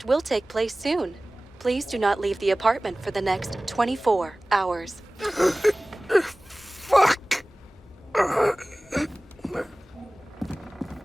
will take place soon. Please do not leave the apartment for the next 24 hours. Fuck!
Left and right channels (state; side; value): normal; both; correlation 0.98